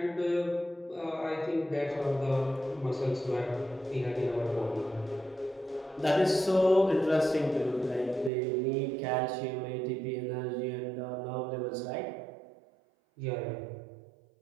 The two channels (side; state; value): left; drops out; at 8.3 s